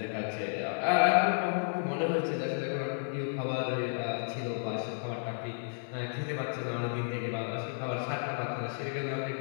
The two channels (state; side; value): silent; right; digital silence